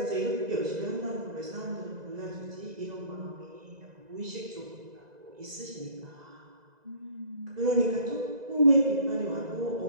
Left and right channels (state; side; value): late; left; 2.0 ms